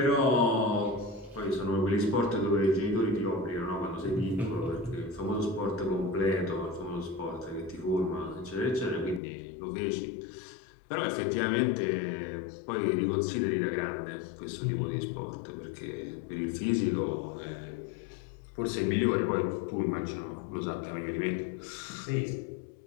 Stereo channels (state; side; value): drops out; right; at 9.2 s